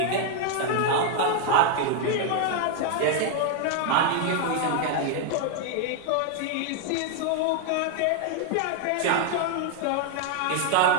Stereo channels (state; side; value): different; both; correlation 0.00